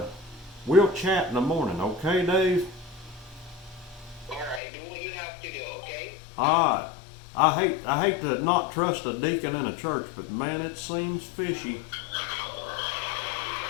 we'll chat in the morning, okay, Dave? Alright, do what you have to do, okay? Alright. I hate to not trust a deacon in a church, but man, it seems fishy.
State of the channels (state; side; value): drops out; right; at 4.6 s